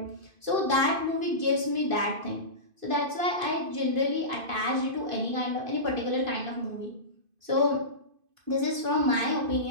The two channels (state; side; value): late; left; 2.5 ms